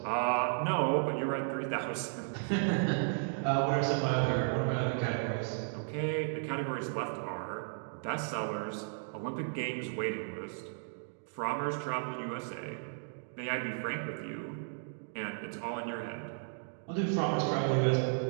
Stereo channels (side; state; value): left; silent; digital silence